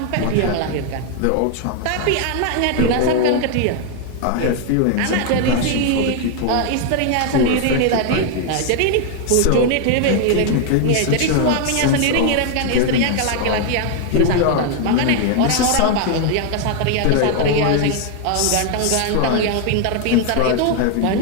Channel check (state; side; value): different; both; correlation 0.00